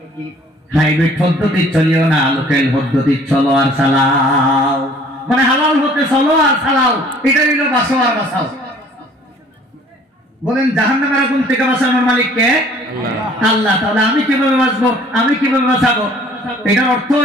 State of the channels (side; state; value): both; normal; correlation 0.54